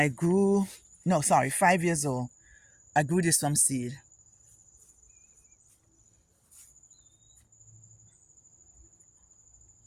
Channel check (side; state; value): both; identical; correlation 1.00